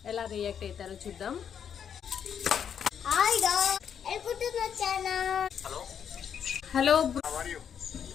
ఎలా రియాక్ట్ అవుతారో చూద్దాం. హలో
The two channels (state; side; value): quieter; right; 8.1 dB